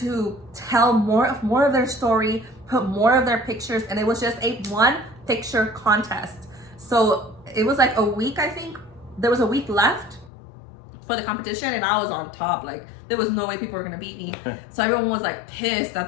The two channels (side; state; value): right; drops out; at 10.3 s